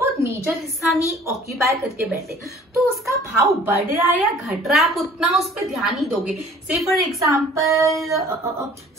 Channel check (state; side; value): normal; both; correlation 0.51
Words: मेजर हिस्सा नहीं ऑक्यूपाई करके बैठे, तो उसका भाव बढ़ रहा है या घट रहा है आप उतना उस पर ध्यान नहीं दोगे। से फॉर एग्जाम्पल